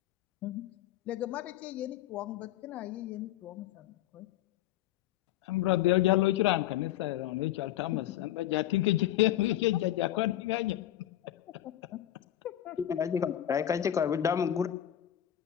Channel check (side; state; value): right; quieter; 12.3 dB